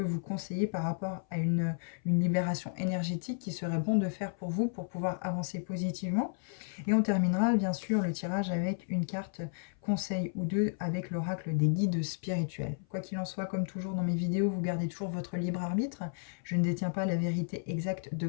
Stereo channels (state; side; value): silent; right; 55 dB below the other